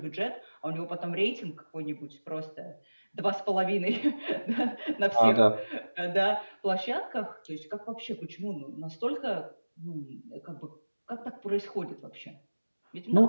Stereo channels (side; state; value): both; inverted; correlation -1.00